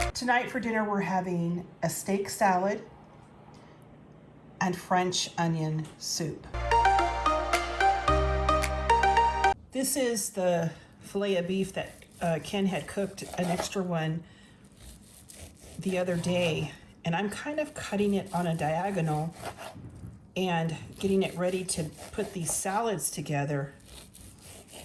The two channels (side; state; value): both; identical; correlation 1.00